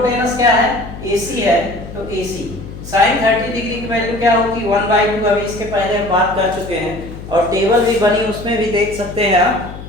क्या है AC है, तो AC साइन 30 डिग्री की वैल्यू क्या होगी 1/2। अभी इसके पहले हम बात कर चुके हैं और टेबल भी बनी, उसमें भी देख सकते हैं आप,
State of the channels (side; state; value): left; noise; hum, 12 dB below the sound